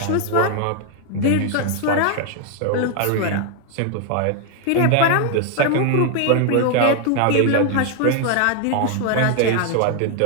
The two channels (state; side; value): different; both; correlation 0.00